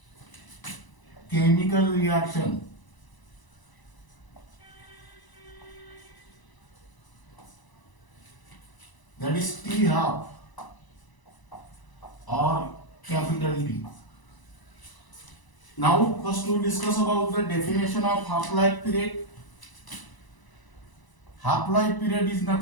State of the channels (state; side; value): late; right; 1.0 ms